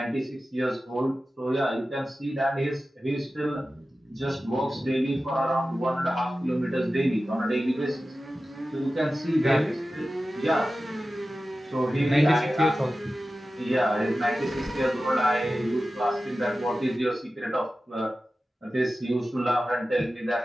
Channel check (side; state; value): both; normal; correlation 0.94